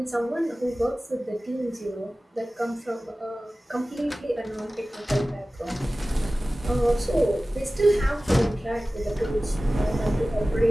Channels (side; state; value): both; normal; correlation 0.97